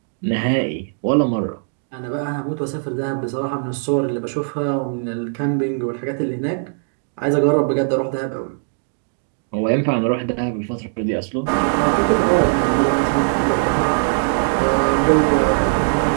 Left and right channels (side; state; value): left; silent; digital silence